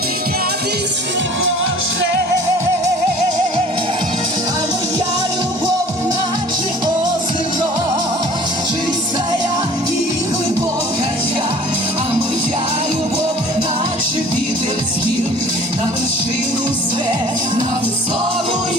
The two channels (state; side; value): normal; both; correlation 0.48